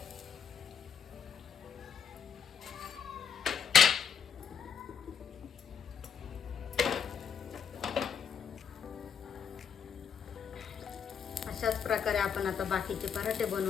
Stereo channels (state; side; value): quieter; right; 7.2 dB